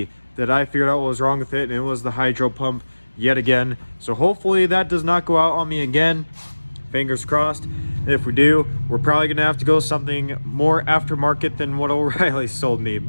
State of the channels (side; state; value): both; inverted; correlation -1.00